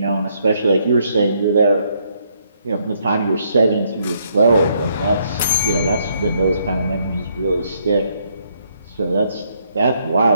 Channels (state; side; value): inverted; both; correlation -0.72